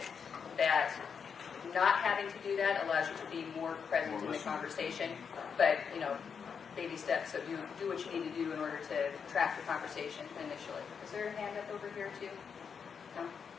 that not having to do that allows you to be more present in the conversation. But, baby steps. So do what you need to do in order to track the conversation initially. Is there a hand up over here too? No?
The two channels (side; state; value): right; quieter; 6.5 dB